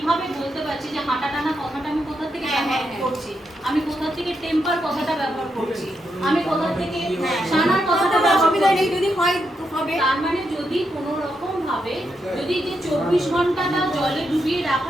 বলতে পারছি যে হাঁটা টানা কথাটা আমি কোথা থেকে ব্যবহার করছি আমি কোথা থেকে টেম্পার কথাটা ব্যবহার করছি আমি কোথা থেকে সানার কথাটা ব্যবহার অসুবিধা করছি নেই যদি হয় তো হবে তার মানে যদি কোনো রকম ভাবে যদি যে 24 ঘন্টাটা জলে ডুবিয়ে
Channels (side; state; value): both; normal; correlation 0.82